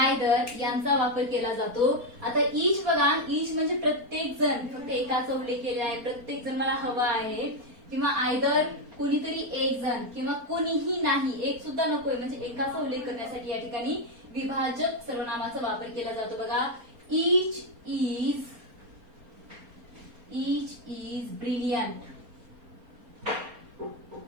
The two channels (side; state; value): left; late; 4.3 ms